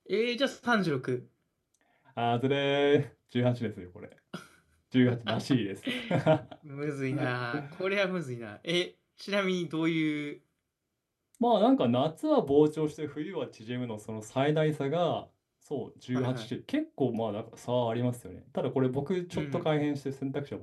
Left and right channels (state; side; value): identical; both; correlation 1.00